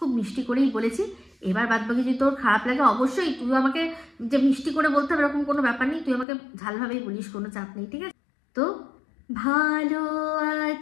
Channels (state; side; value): drops out; right; at 6.2 s